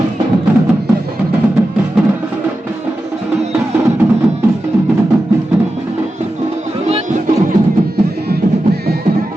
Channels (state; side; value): normal; both; correlation 0.91